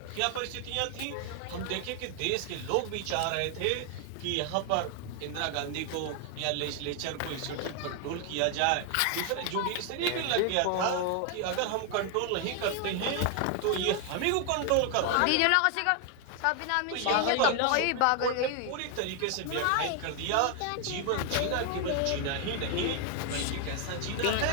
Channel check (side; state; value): both; different; correlation 0.00